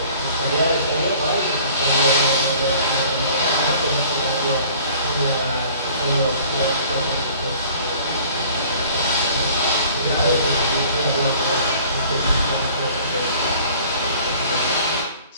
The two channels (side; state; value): both; inverted; correlation -0.51